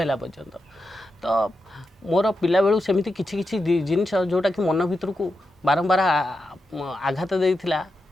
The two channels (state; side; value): normal; both; correlation 0.88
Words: ହେଲା ପର୍ଯ୍ୟନ୍ତ। ତ ମୋର ପିଲାବେଳୁ ସେମିତି କିଛି କିଛି ଜିନିଷ ଯେଉଁଟାକି ମନ ଭିତରକୁ ବାରମ୍ବାର ଆଘାତ ଦେଇଥିଲା,